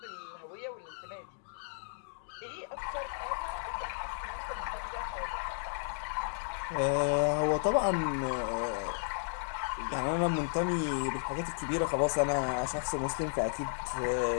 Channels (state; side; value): silent; right; digital silence